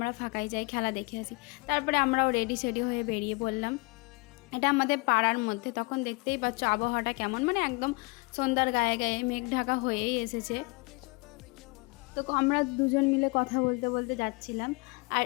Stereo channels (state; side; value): quieter; right; 28.4 dB